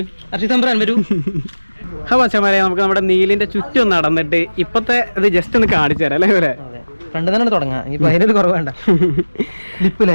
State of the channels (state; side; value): inverted; both; correlation -1.00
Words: അർഷി തമ്പുരാൻ വരൂ. മച്ചമാരെ, നമുക്ക് നമ്മുടെ നീലിന്റെ ചുറ്റും നടന്നിട്ട് ഇപ്പത്തെ ഇത് ജസ്റ്റ് ഒന്ന് കാണിച്ചു തരാം അല്ലേ? ഇവരെ ഫ്രണ്ട് തന്നെ തുടങ്ങാം. ഇപ്പൊ അതിനൊരു കുറവ് വേണ്ട.